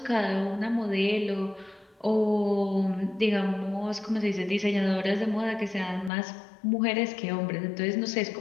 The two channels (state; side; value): drops out; right; at 6.1 s